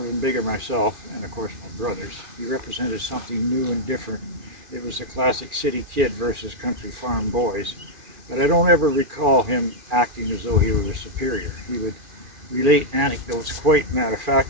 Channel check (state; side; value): late; left; 2.4 ms